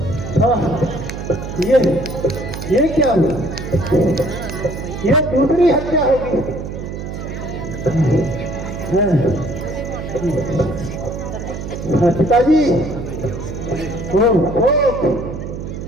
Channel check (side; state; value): right; noise; hum, 7 dB below the sound